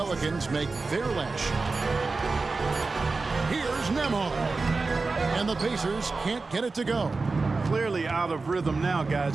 make their last shot. Here's Nembhard. And the Pacers can't get it to go. Clearly out of rhythm now,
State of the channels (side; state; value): left; quieter; 3.9 dB